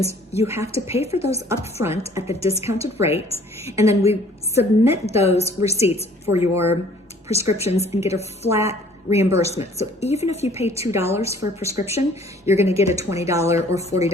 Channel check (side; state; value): both; normal; correlation 0.55